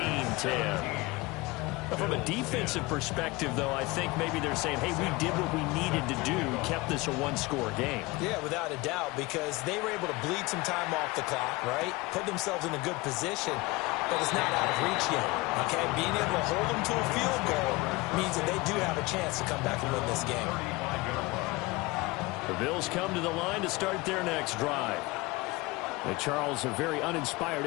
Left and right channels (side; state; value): right; quieter; 22.8 dB